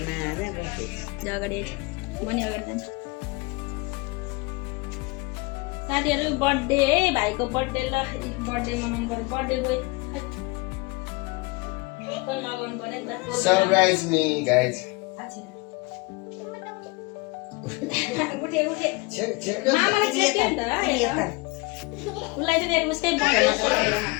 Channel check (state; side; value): quieter; right; 25.4 dB